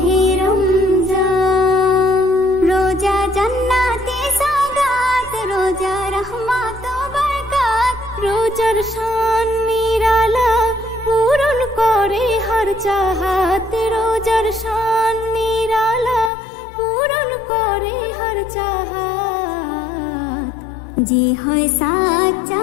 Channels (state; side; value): drops out; right; at 16.3 s